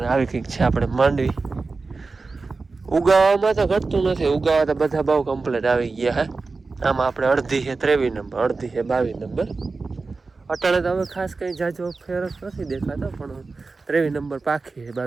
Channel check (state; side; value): quieter; left; 4.0 dB